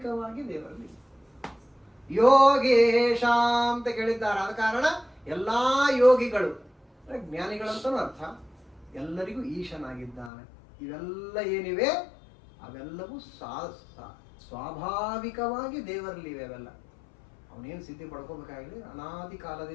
ದೇವರಲ್ಲಿ ಯೋಗೇಶ ಅಂತ ಕೇಳಿದ್ದಾರೆ. ಆದ ಕಾರಣ ಎಲ್ಲಾ ಯೋಗಿಗಳು ಜ್ಞಾನಿಗಳಂತನೂ ಅರ್ಥ, ಎಲ್ಲರಿಗೂ ಈಶನಾಗಿದ್ದಾನೆ. ಇವೆಲ್ಲ ಏನಿವೆ ಅವೆಲ್ಲವೂ ಸ್ವಾಭಾವಿಕವಾಗಿ ದೇವರಲ್ಲಿವೆ. ಅವೆಲ್ಲ ಅವನೇನು ಸಿದ್ಧಿ ಪಡ್ಕೋಬೇಕಾಗಿಲ್ಲ, ಅನಾದಿ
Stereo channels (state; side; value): drops out; right; at 10.3 s